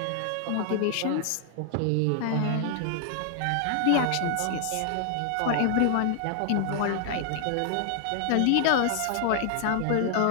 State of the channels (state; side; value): different; both; correlation 0.00